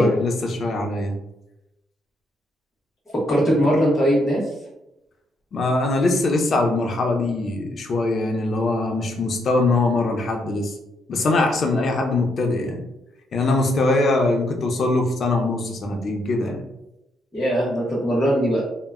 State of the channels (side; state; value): both; normal; correlation 0.76